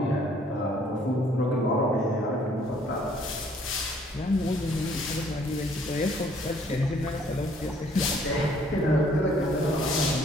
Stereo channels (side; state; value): both; normal; correlation 0.62